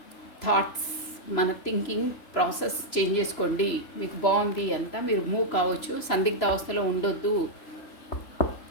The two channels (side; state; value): right; late; 3.0 ms